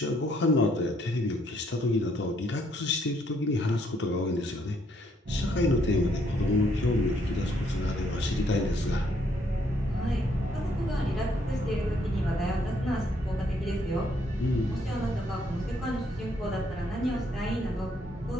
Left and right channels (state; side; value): normal; both; correlation 0.70